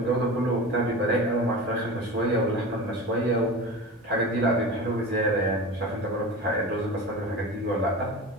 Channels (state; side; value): normal; both; correlation 0.31